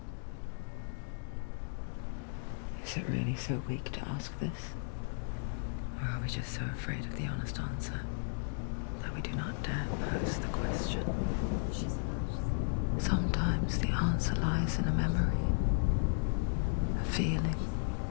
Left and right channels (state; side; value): silent; right; digital silence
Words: Is it really so weak to ask this? Or are we just so afraid of the honest answer that we do not dare pose the question? Sometimes the answer lies in a memory, a feeling,